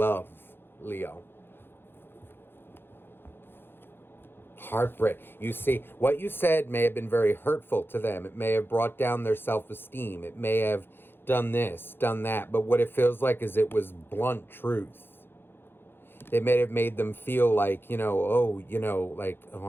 Leo. Heartbreak. You see, what you said may have been very hurtful to them. It may have brought down their self-esteem. It may have done this, done that. But what it feels like is it was blunt truth. It may have made them feel like, like, oh,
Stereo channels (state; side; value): late; right; 0.10 ms